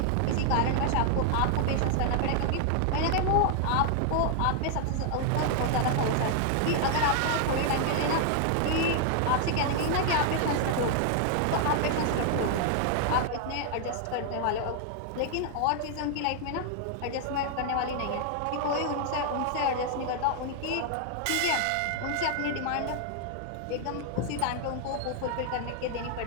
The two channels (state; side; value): different; both; correlation 0.00